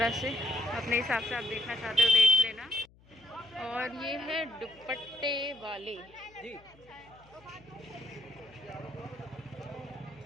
से अपने हिसाब से आप देखना चाहते हो देख लेना। और ये है दुपट्टे वाले जी।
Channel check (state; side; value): noise; left; hum, 27 dB below the sound